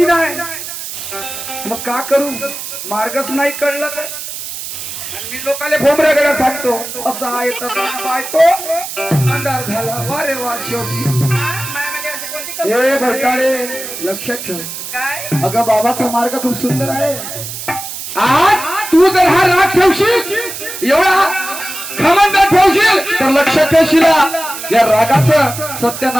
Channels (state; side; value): noise; right; hiss, 8 dB below the sound